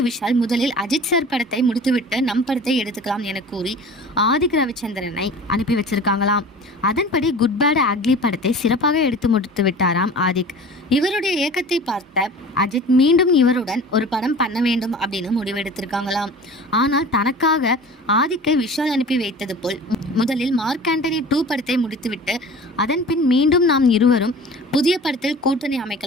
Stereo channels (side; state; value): both; normal; correlation 0.40